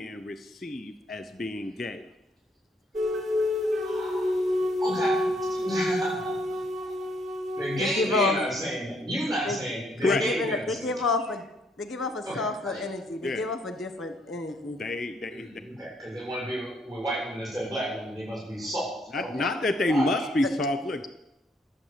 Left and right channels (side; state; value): both; normal; correlation 0.70